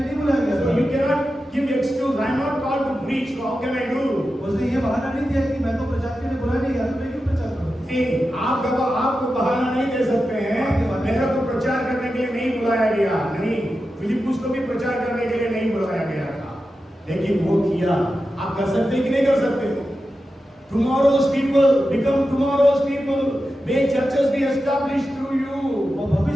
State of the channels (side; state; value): both; normal; correlation 0.91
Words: नहीं बुलाया गया So you था cannot give excuse. I am not called to preach. So how can I do? उसने ये बहाना नहीं दिया कि मैं तो प्रचार के लिए बुलाया नहीं गया तो मैं क्यों प्रचार करूं नहीं, आपको बहाना नहीं दे सकते हैं. मेरा तो प्रचार करने के लिए नहीं बुलाया गया. नहीं, फिलिपुस को भी प्रचार करने के लिए नहीं बुलाया गया था, लेकिन वो किया. आप कर सकते हैं कि नहीं कर सकते? Tomorrow's people become tomorrow's people. May churches be established through you. और